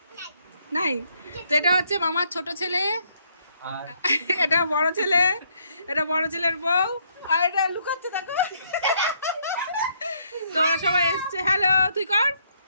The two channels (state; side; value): inverted; both; correlation -0.70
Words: নাই। তো এটা হচ্ছে মামার ছোট ছেলে, এটা বড় ছেলে, এটা বড় ছেলের বউ, আর এটা লুকাচ্ছে দেখো। তো ওরা সবাই এসছে। হ্যালো, তুই কর